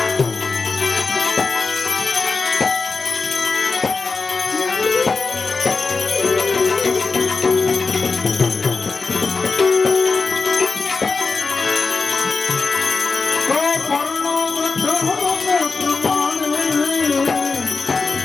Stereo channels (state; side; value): quieter; right; 4.3 dB